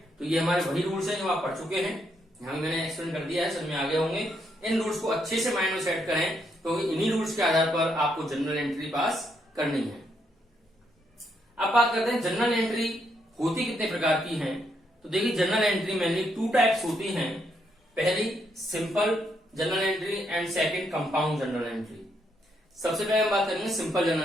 तो ये हमारे वही रूल्स हैं जो आप पढ़ चुके हैं, यहां मैंने एक्सप्लेन कर दिया है, समझ में आ गए होंगे। इन रूल्स को अच्छे से माइंड में सेट करें तो इन्हीं रूल्स के आधार पर आपको जनरल एंट्री पास करनी है। अब बात करते हैं जनरल एंट्री होती कितने प्रकार की है। तो देखिए जनरल एंट्री मेनली 2 टाइप्स होती हैं। पहली simple general entry and second compound general entry. सबसे पहले हम बात करेंगे सिंपल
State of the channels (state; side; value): normal; both; correlation 0.76